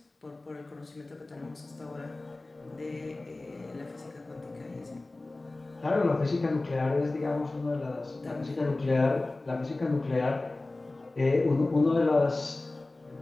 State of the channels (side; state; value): right; quieter; 3.0 dB